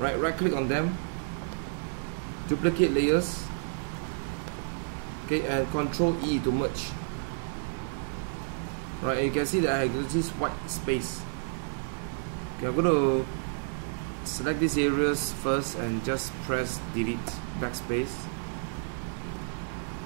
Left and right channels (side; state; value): left; silent; digital silence